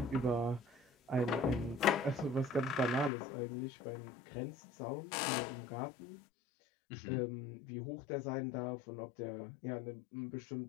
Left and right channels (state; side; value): drops out; right; at 3.1 s